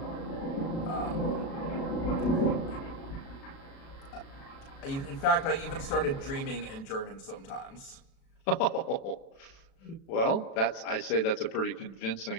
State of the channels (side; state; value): right; late; 36 ms